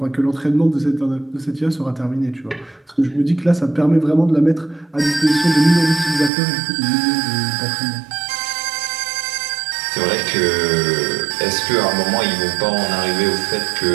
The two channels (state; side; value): drops out; left; at 6.3 s